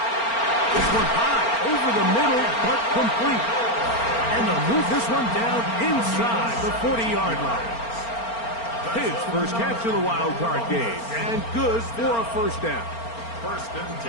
This one high, over the middle, but complete. And they'll move this one down inside the 40-yard line. His first catch of the wild card game, and good for a first down. First and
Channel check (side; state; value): right; late; 4.4 ms